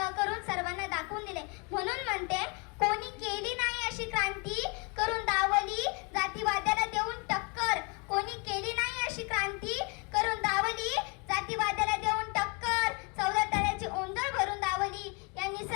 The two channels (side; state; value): right; quieter; 32.4 dB